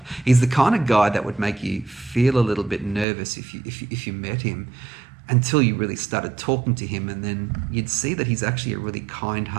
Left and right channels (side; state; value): left; drops out; at 3.1 s